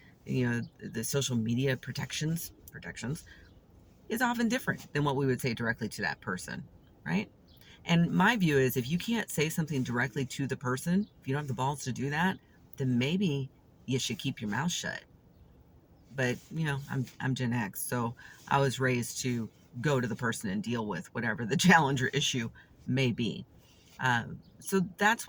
the social media protections is often different than what we would say directly to that person, right? And my view is if you can't say something directly to the person, if you don't have the balls to do that, then maybe you should keep your mouth shut. But I'm Gen X, so I was raised to go to the person and deal with whatever the challenge or issue may be. So that's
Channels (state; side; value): identical; both; correlation 1.00